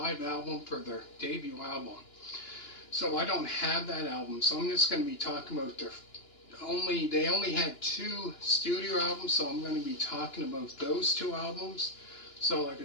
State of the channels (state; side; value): late; right; 2.9 ms